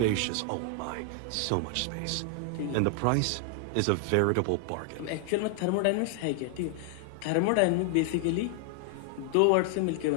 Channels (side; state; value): both; different; correlation 0.00